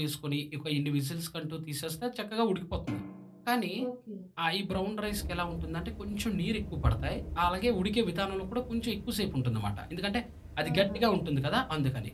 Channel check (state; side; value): identical; both; correlation 1.00